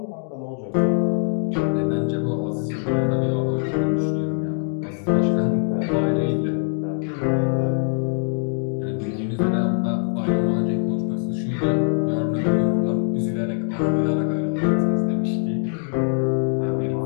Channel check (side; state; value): right; silent; 59 dB below the other